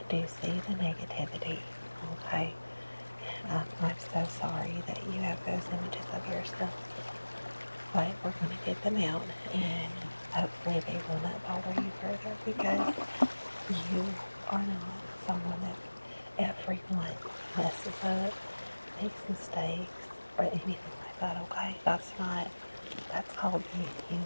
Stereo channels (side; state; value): both; inverted; correlation -1.00